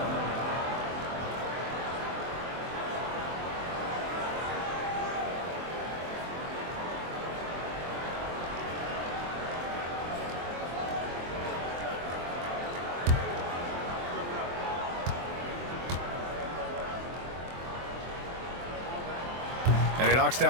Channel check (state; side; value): late; left; 23 ms